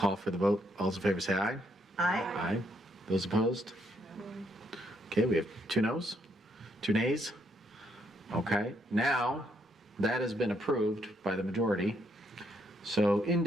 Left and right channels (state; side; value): normal; both; correlation 0.73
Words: for the vote. All those in favor say aye. Aye. Aye. Those opposed? Okay, we have 2 noes, 2 nays. Okay, now that has been approved by the majority. So